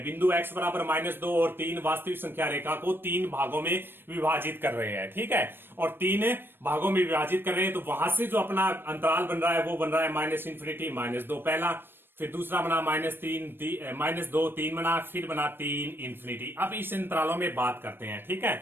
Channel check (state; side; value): late; left; 0.099 ms